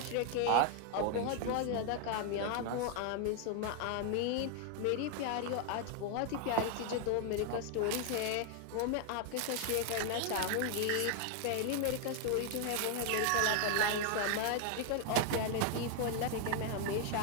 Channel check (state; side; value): different; both; correlation 0.00